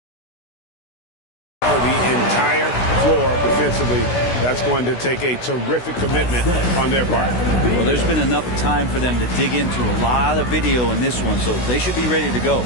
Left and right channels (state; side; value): late; right; 16 ms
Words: The entire floor defensively. That's going to take a terrific commitment on their part. Well, there's been enough time for them to dig into a lot of video in this one, so they should be ready to go.